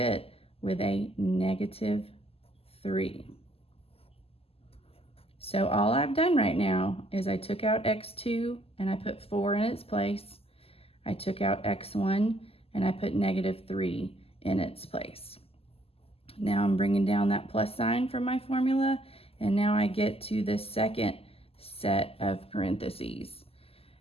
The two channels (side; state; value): right; late; 0.28 ms